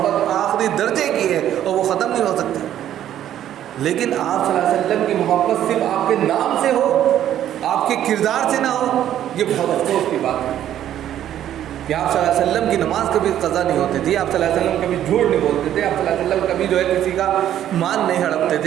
آخری درجے کی ہے اور وہ ختم نہیں ہو سکتی، لیکن آپ صلی اللہ علیہ وسلم کی محبت صرف آپ کے نام سے ہو، آپ کے کردار سے نہ ہو، یہ بہت افسوس کی بات ہے کہ آپ صلی اللہ علیہ وسلم کی نماز کبھی قضا نہیں ہوتی تھی، آپ صلی اللہ علیہ وسلم کبھی جھوٹ نہیں بولتے تھے، آپ صلی اللہ علیہ وسلم کبھی جو ہے کسی کا مان نہیں ہڑپتے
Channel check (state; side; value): quieter; left; 11.3 dB